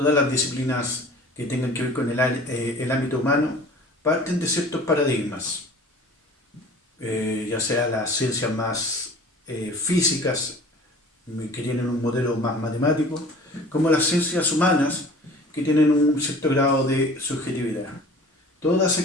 las disciplinas que tengan que ver con el ámbito humano, parten de ciertos paradigmas, ya sea las ciencias más físicas, que tienen un modelo más matemático, como las ciencias humanas, que tienen un cierto grado de subjetividad. Todas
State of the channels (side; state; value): both; normal; correlation 0.45